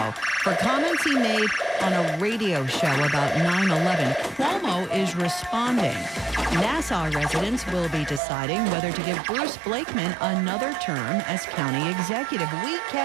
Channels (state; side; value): drops out; left; at 8.2 s